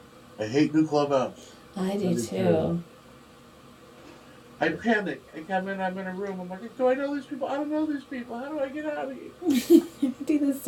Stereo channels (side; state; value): both; identical; correlation 1.00